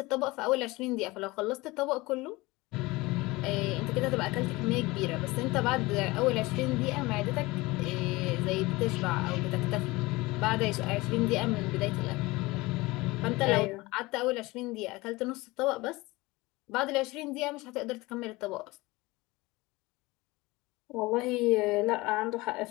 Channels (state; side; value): quieter; right; 21.8 dB